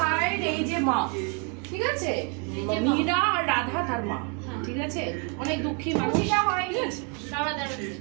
এই যে মা, ঠিক আছে, মীরা আর রাধা তার মা, ঠিক আছে, অনেক দুঃখী মানুষ,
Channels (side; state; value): left; quieter; 35.9 dB